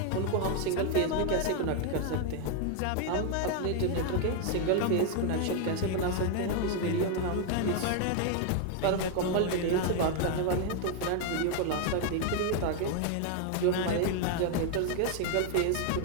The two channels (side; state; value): both; different; correlation 0.01